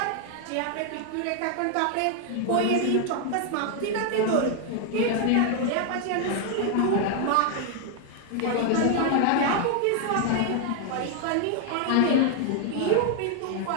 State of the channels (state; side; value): different; both; correlation 0.00